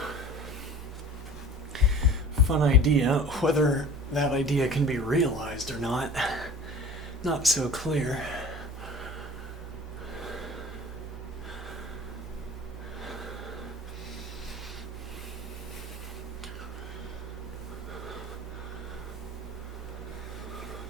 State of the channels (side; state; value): both; normal; correlation 0.42